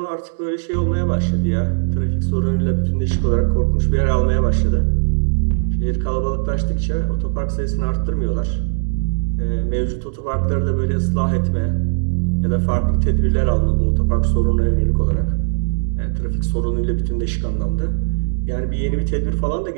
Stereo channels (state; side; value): silent; left; digital silence